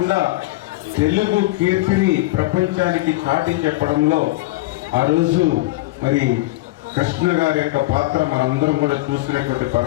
తెలుగు కీర్తిని ప్రపంచానికి చాటి చెప్పడంలో ఆ రోజు మరి కృష్ణ గారి యొక్క పాత్ర మనందరం కూడా చూసినటువంటి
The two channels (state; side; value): quieter; right; 19.3 dB